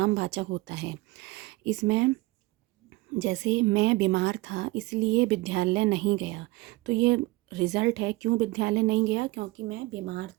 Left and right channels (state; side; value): quieter; left; 21.2 dB